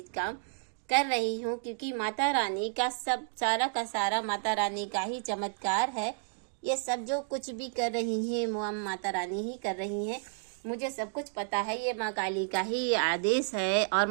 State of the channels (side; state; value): left; silent; digital silence